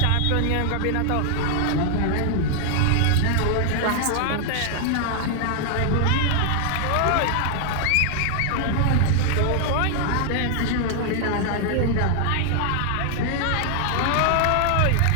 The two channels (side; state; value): both; different; correlation 0.00